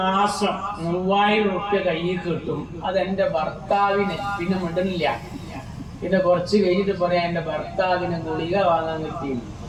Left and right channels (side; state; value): both; identical; correlation 1.00